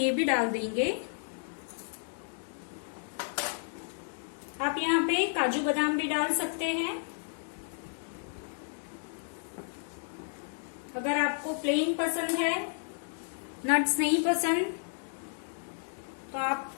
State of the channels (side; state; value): right; silent; digital silence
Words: भी डाल देंगे। आप यहाँ पे काजू बादाम भी डाल सकते हैं। अगर आपको प्लेन पसंद है, नट्स नहीं पसंद, तो आप